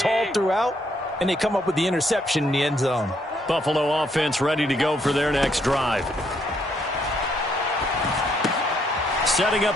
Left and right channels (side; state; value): both; normal; correlation 0.72